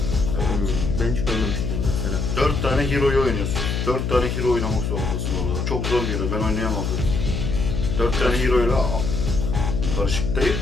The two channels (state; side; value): noise; left; hum, 1 dB below the sound